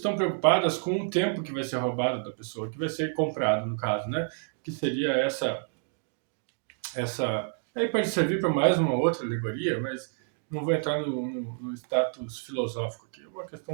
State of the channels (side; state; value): left; silent; 59 dB below the other